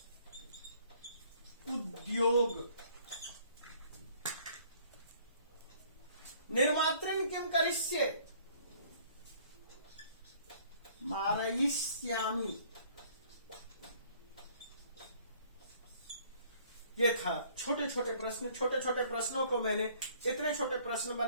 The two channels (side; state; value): both; inverted; correlation -0.58